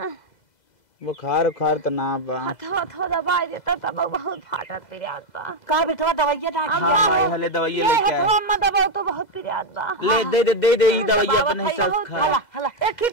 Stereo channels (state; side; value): late; right; 2.0 ms